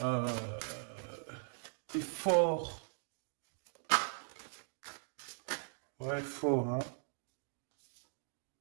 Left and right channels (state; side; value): silent; left; digital silence